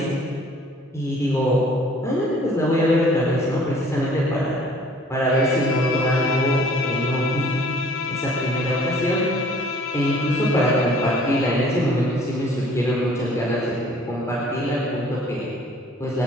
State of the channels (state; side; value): normal; both; correlation 0.54